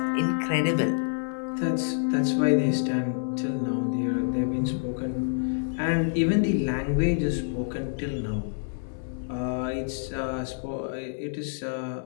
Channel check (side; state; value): right; silent; 60 dB below the other